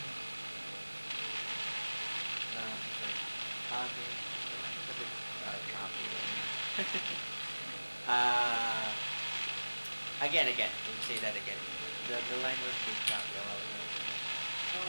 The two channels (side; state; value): both; inverted; correlation -1.00